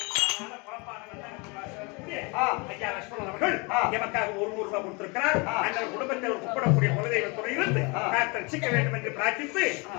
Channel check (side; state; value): right; quieter; 29.3 dB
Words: ஐயா லட்சுமணன் அவர்கள் எமக்காக 100 ரூபாய் கொடுத்திருக்கிறார். அந்த குடும்பத்தை ஒரு கூப்பிடக்கூடிய குலதெய்வ துறையிலிருந்து ரசிக்க வேண்டும் என்று பிரார்த்தித்து